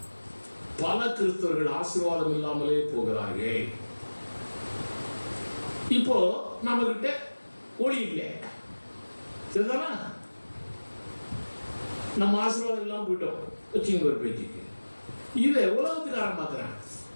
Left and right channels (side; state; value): both; inverted; correlation -1.00